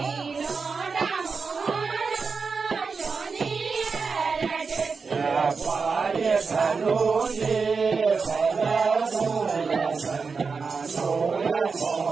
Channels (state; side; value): quieter; left; 4.9 dB